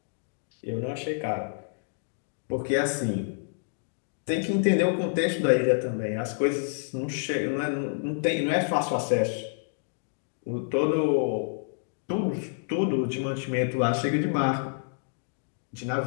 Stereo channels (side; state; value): right; silent; digital silence